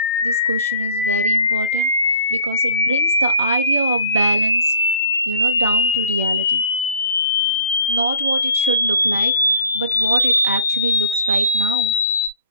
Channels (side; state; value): both; inverted; correlation -0.55